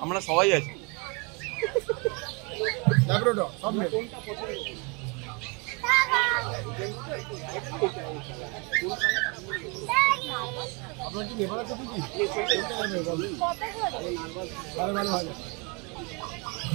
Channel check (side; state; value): left; quieter; 30.8 dB